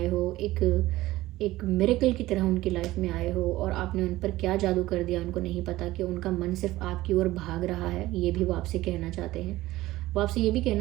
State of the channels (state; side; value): quieter; left; 17.1 dB